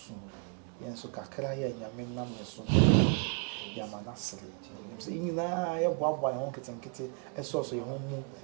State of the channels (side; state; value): left; quieter; 37.1 dB